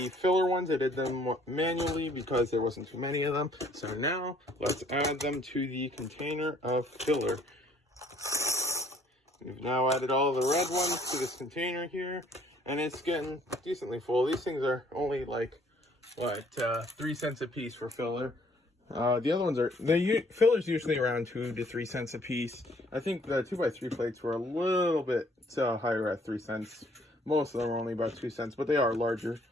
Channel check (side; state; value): both; normal; correlation 0.61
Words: filler ones. I did them manually because there wasn't too many of them. So now, let's add them to the container of filler. We've now added all the red ones to this container here, and it's getting decently full. These things are only like, 3 cents a piece for filler. The other ones are, filler's usually around 2 to 3 cents a piece. I think the 2x3 plates were a little bit higher at 3 cents. Most of them are only about 2 cents, but they are larger